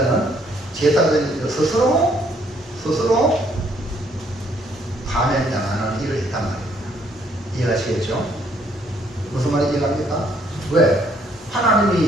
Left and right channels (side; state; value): both; normal; correlation 0.67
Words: 제사장이 스스로 파면당하는 일을 했단 말입니다. 이해하시겠죠? 무슨 말인지 이해합니까? 왜?